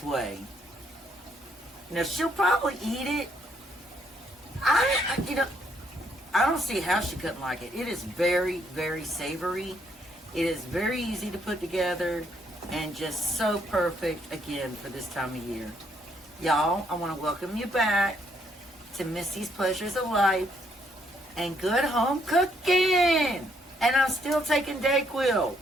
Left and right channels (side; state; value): both; normal; correlation 0.71